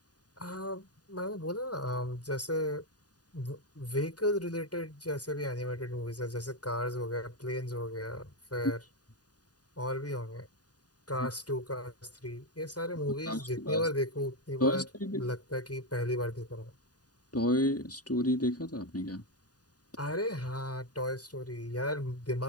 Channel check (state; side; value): late; right; 0.68 ms